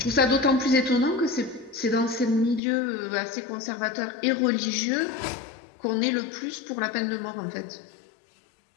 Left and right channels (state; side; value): drops out; right; at 2.6 s